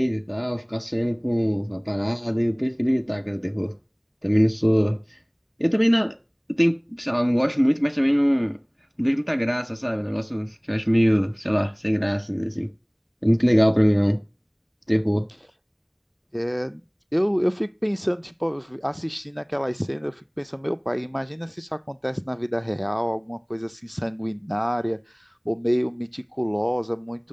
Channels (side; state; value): both; identical; correlation 1.00